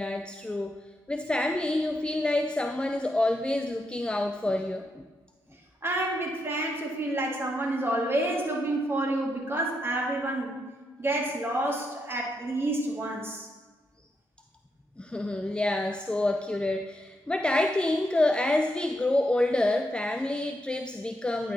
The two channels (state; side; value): normal; both; correlation 0.81